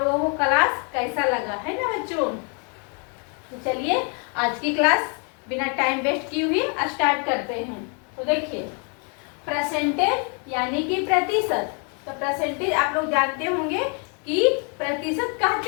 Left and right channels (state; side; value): quieter; right; 38.0 dB